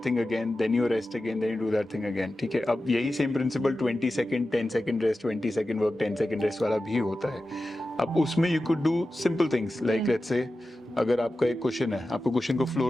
thing again, then you rest again, then you do that thing again. ठीक है. अब यही same principle 20 second, 10 second rest, 20 second work, 10 second rest वाला भी होता है. अब उसमें you could do simple things like let's say अगर आपका एक क्वेश्चन है, आपको क्वेश्चन को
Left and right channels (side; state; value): both; normal; correlation 0.93